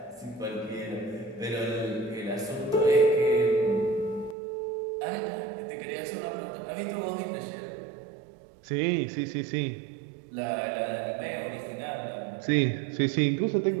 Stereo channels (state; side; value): drops out; left; at 4.4 s